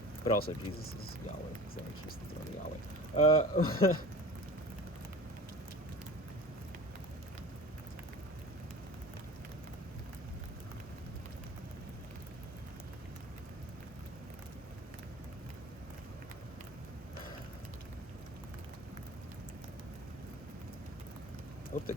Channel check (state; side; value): normal; both; correlation 0.38